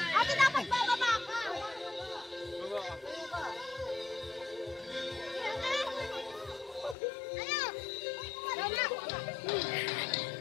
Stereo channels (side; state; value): right; drops out; at 7.0 s